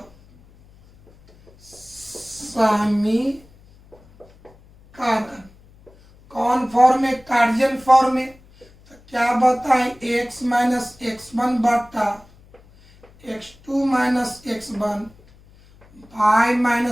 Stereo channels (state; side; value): noise; left; hum, 27 dB below the sound